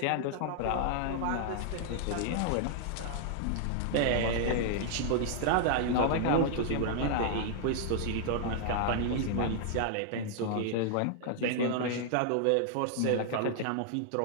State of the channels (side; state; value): both; different; correlation 0.00